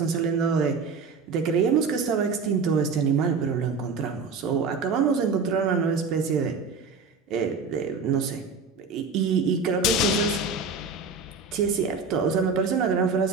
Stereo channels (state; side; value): quieter; left; 4.6 dB